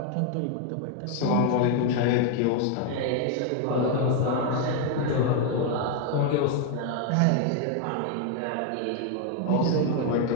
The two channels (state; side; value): different; both; correlation 0.00